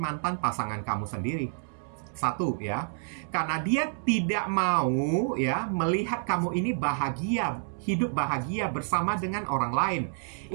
pasangan kamu sendiri. Satu ya, karena dia tidak mau ya melihat kamu ini bahagia, hidup bahagia bersama dengan orang lain.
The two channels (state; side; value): silent; left; digital silence